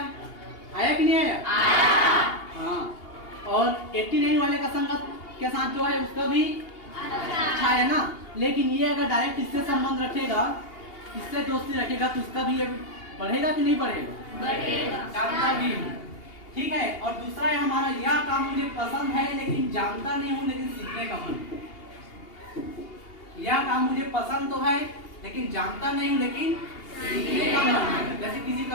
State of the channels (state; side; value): late; right; 2.8 ms